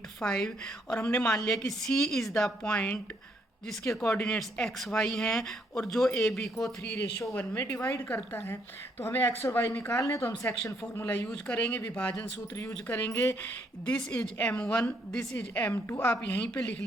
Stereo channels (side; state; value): both; normal; correlation 0.71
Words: 5, और हमने मान लिया कि सी इज़ द पॉइंट जिसके कोऑर्डिनेट्स एक्स वाई हैं और जो ए बी को 3:1 में डिवाइड करता है। तो हमें एक्स और वाई निकालने, तो हम सेक्शन फॉर्मूला यूज करेंगे, विभाजन सूत्र यूज करेंगे। This is M1, this is M2। आप यहीं पे लिख